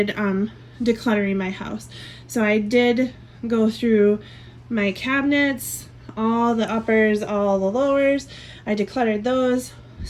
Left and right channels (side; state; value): both; identical; correlation 1.00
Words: decluttering my house. So I did go through my cabinets, all the uppers, all the lowers. I decluttered those